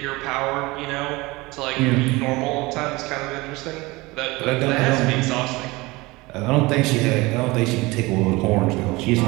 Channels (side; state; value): left; quieter; 22.3 dB